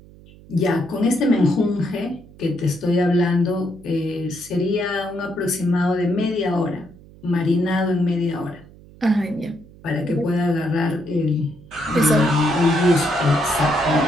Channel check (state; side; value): noise; right; hum, 22 dB below the sound